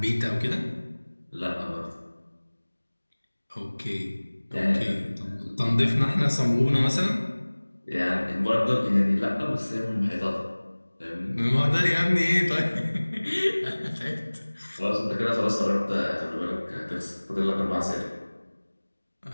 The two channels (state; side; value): inverted; both; correlation -1.00